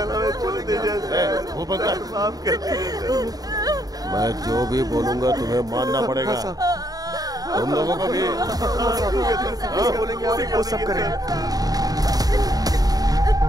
हमें छोड़ दीजिए। माफ कर दीजिए। मैं जो भी बोलूंगा तुम्हें मानना पड़ेगा। तुम लोगों को भी बोलेंगे आप वो सब करेंगे।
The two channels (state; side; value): late; left; 0.18 ms